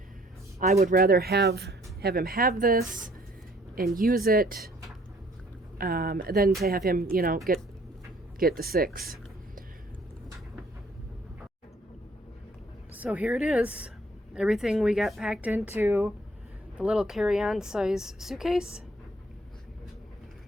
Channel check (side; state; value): both; normal; correlation 0.60